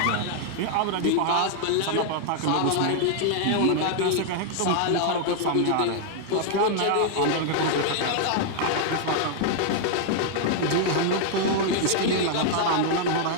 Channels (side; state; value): both; different; correlation 0.00